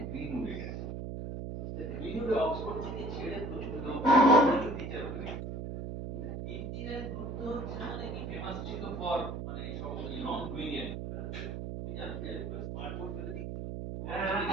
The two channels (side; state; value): right; noise; hum, 5 dB below the sound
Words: গ্রিনউডে গেছে। গ্রিনউডে অক্সফোর্ড থেকে ছেড়ে প্রচুর লোক টিচার হয়ে গেছে। ইঞ্জিনিয়ারিং গ্রুপ তো হচ্ছে মানে কি ফেমাস ছিল ফর মানে সব নন ব্রিলিয়েন্ট। তুমি জানো স্মার্ট বোর্ড